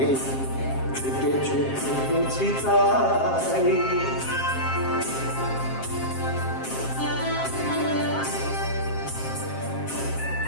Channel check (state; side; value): late; right; 7.5 ms